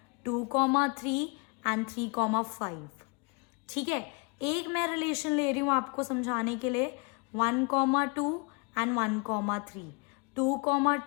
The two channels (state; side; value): quieter; right; 32.0 dB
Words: 2,3 एंड 3,5, ठीक है। एक मैं रिलेशन ले रही हूँ आपको समझाने के लिए 1,2 एंड 1,3,